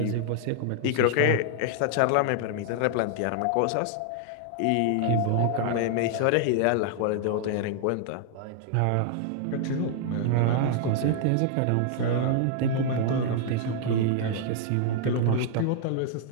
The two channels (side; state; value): both; different; correlation -0.01